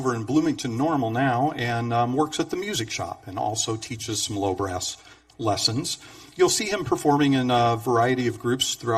in Bloomington Normal now, and works at the music shop and also teaches some low brass lessons. You'll see him performing in a variety of groups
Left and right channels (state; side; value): identical; both; correlation 1.00